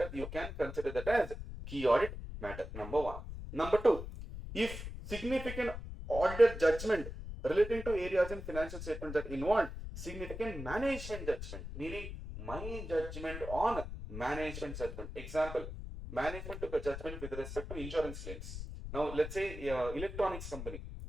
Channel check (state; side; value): noise; left; rumble, 8 dB below the sound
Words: You can consider that as key audit matter. Number one. Number two, if significant auditor judgment relating to areas in financial statement that involve significant management judgment, meaning my judgment on management judgment. Example, management took a judgment with respect to insurance claims. Now, let's say electronics company.